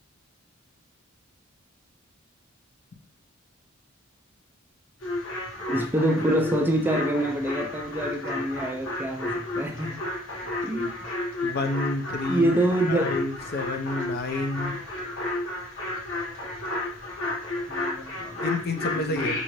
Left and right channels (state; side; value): normal; both; correlation 0.58